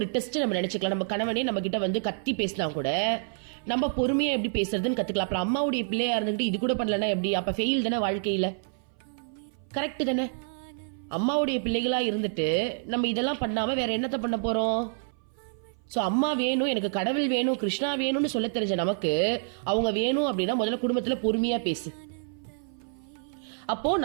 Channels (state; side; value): silent; left; 57 dB below the other